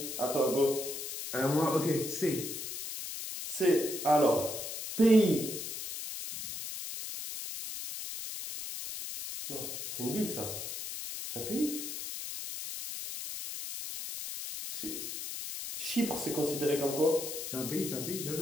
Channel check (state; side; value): noise; left; hiss, 6 dB below the sound